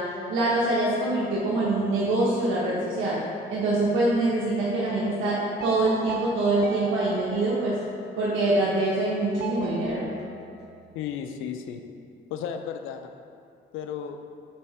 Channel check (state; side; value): normal; both; correlation 0.50